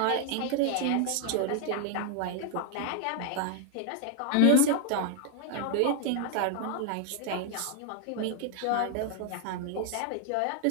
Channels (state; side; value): different; both; correlation 0.00